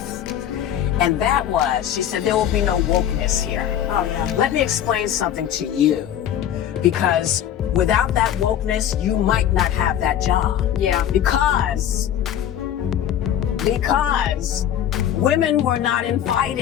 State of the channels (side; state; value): right; quieter; 10.4 dB